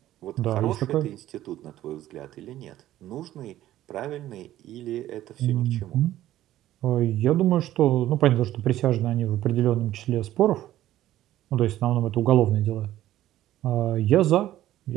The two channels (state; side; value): quieter; left; 13.8 dB